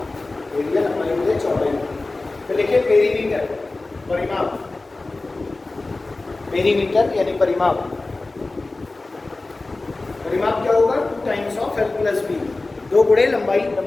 एरिया लंबाई बटे चौड़ाई। तो लिखिए पेरीमीटर, परिमाप, पेरीमीटर यानी परिमाप। परिमाप क्या होगा, 2 times of L plus B, 2 गुणे लंबाई,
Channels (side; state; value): right; quieter; 3.2 dB